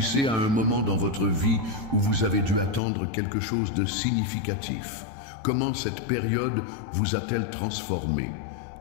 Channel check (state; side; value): drops out; right; at 2.8 s